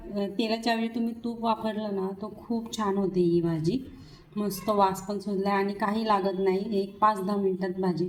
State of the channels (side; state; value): both; identical; correlation 1.00